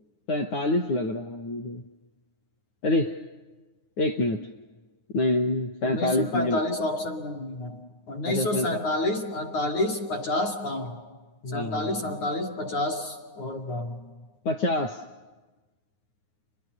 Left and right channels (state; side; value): late; right; 9.6 ms